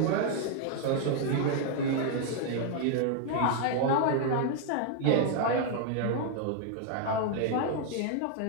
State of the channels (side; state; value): both; different; correlation 0.00